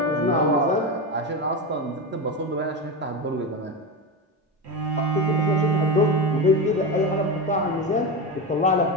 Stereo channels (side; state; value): both; normal; correlation 0.17